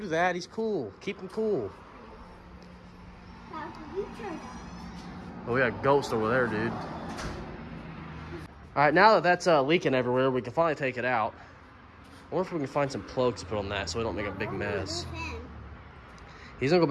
that. He's cool. Keep him cool. Oh, we got a ghost over there, dude. All right, now that that's leaking everywhere, we can finally take it out. I wonder if we can find some plugs to put on that so we don't make a big mess. He's gonna go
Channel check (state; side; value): identical; both; correlation 1.00